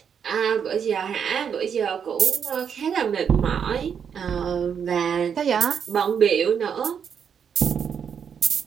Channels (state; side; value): quieter; left; 7.4 dB